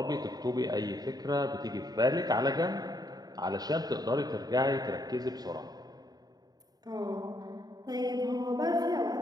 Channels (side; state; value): left; late; 0.19 ms